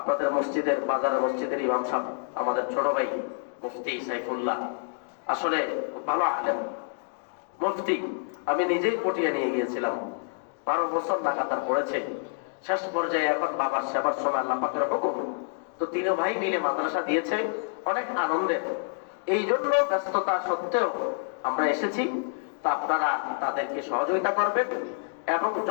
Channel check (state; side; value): silent; right; 60 dB below the other